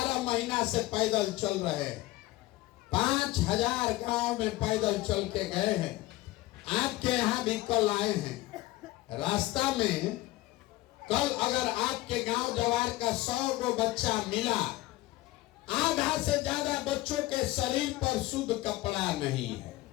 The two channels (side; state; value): right; quieter; 18.3 dB